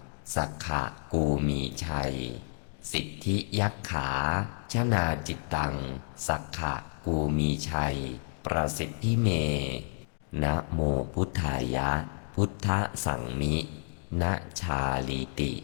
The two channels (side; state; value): right; silent; digital silence